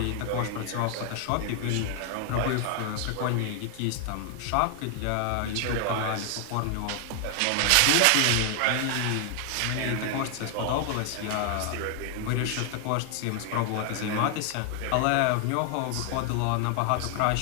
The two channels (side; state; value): both; different; correlation 0.00